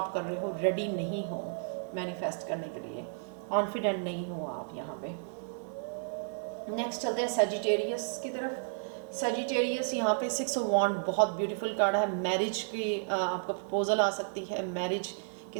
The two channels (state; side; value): silent; left; digital silence